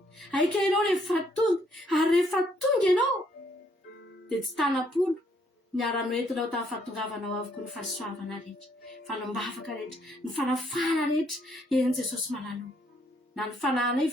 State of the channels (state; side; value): normal; both; correlation 0.69